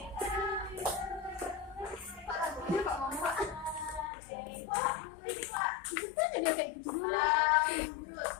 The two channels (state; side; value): drops out; right; at 4.1 s